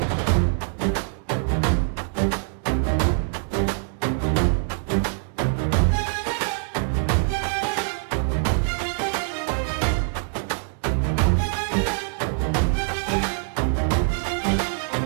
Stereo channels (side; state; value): left; silent; digital silence